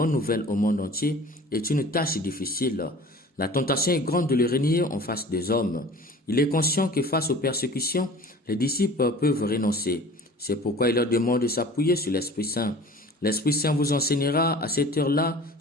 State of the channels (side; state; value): both; normal; correlation 0.43